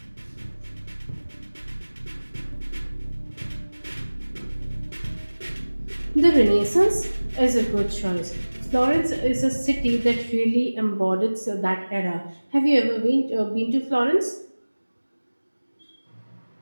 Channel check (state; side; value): inverted; both; correlation -1.00